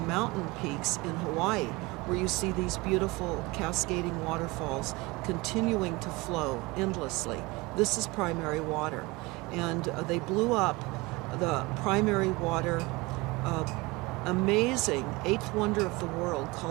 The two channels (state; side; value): quieter; left; 23.5 dB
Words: peaks in Hawaii, where you see these beautiful cascading waterfalls continuing to flow endlessly. This is primary water. And they blew up the primary water amazing eighth wonder of the world